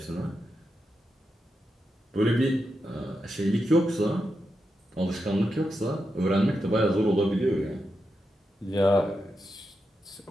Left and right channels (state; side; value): normal; both; correlation 0.87